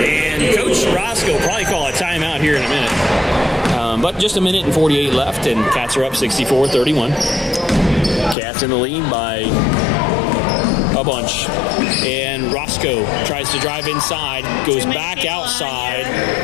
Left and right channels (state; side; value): drops out; right; at 8.3 s